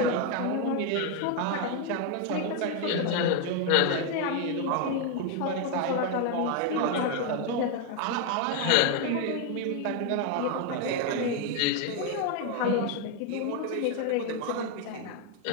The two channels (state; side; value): different; both; correlation 0.01